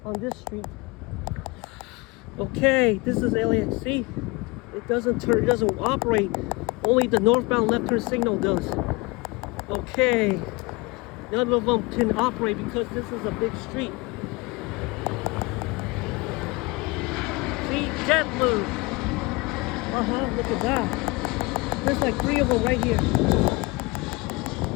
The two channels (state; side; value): quieter; right; 25.3 dB